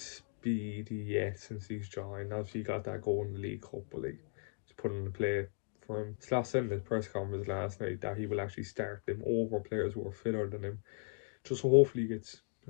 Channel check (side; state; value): right; silent; 53 dB below the other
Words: yet since he's joined. Obviously, he got that goal in the League Cup, but he's put in the play for him. Slav said in his press conference last night that he will actually start them over players who are fitter than him. Just so hopefully he gets,